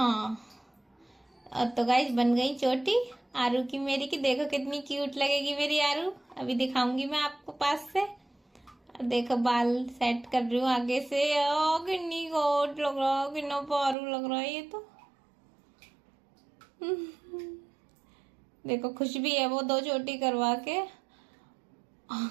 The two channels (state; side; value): drops out; left; at 14.0 s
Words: और तो गाइस बन गई चोटी आरू की मेरी की। देखो कितनी क्यूट लगेगी मेरी आरू, अभी दिखाऊंगी मैं आपको पास से। और देखो बाल सेट कर रही हूँ आगे से। ओ कितनी गोट लग रहा है, कितना पारू लग रहा है ये तो। देखो खुश भी है वो 2 चोटी करवा के।